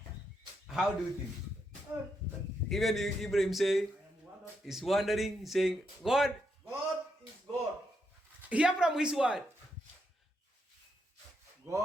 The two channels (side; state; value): both; normal; correlation 0.80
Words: How do you think? Even Ibrahim say, is wondering, saying, God, God is God. hear from his word.